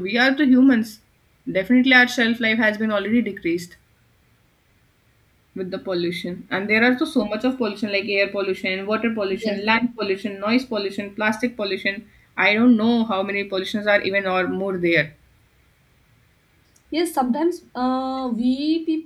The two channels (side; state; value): both; identical; correlation 1.00